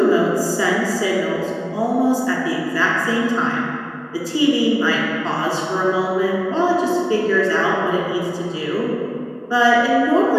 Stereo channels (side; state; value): both; identical; correlation 1.00